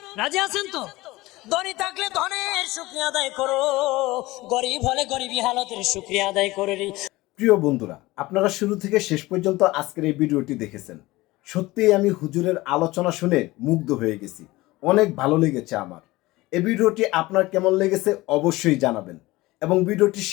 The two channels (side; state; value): right; quieter; 19.7 dB